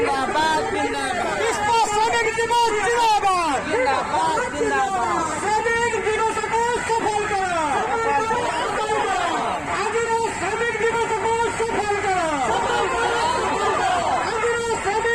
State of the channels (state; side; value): identical; both; correlation 1.00